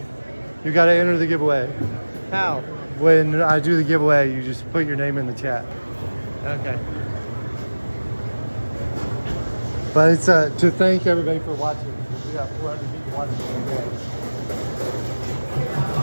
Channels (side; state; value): both; inverted; correlation -1.00